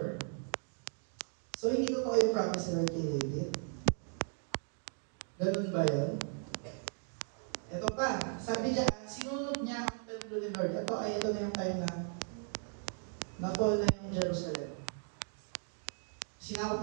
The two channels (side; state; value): left; silent; 53 dB below the other